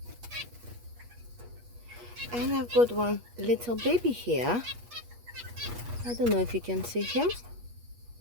And I've got one little baby here. I don't know if you can see him.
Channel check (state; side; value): late; left; 8.4 ms